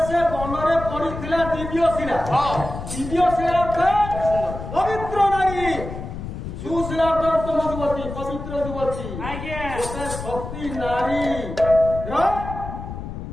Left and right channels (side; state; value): left; noise; rumble, 8 dB below the sound